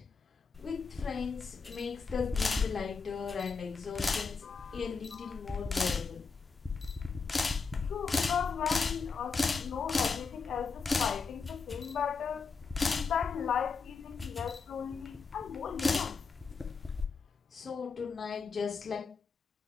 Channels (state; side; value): quieter; right; 5.0 dB